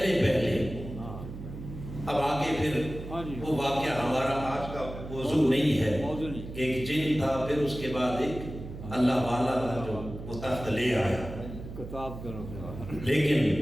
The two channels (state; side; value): noise; right; hum, 11 dB below the sound